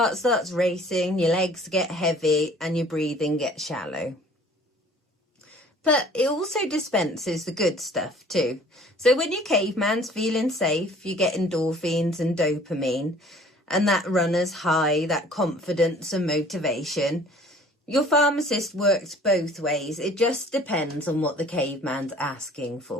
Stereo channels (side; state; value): both; normal; correlation 0.52